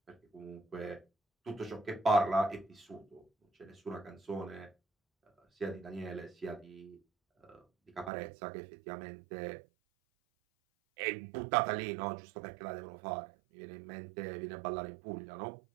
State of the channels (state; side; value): drops out; left; at 8.1 s